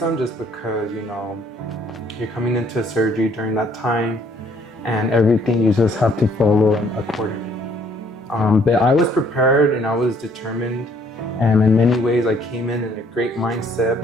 just because, you're coming into a surgery during that time, and everything you just have to follow accordingly. But I was prepared and I was determined, and in many ways I came in a great mindset,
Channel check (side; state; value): both; normal; correlation 0.63